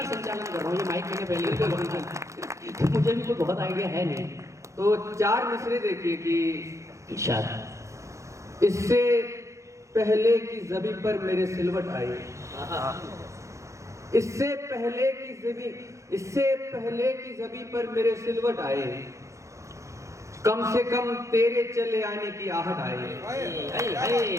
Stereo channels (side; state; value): left; late; 0.15 ms